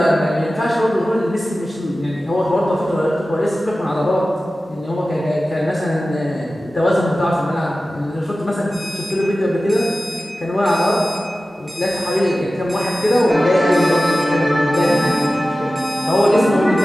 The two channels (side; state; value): both; normal; correlation 0.95